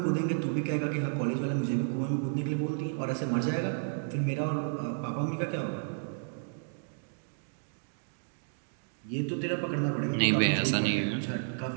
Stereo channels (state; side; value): silent; left; digital silence